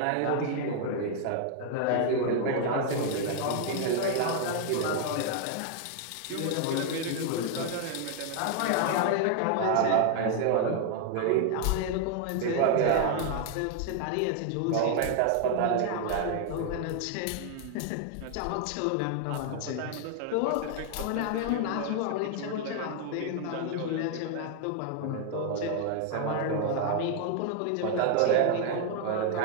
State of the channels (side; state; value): both; different; correlation 0.00